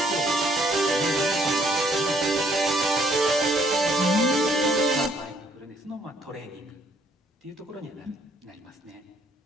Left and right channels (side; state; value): both; normal; correlation 0.65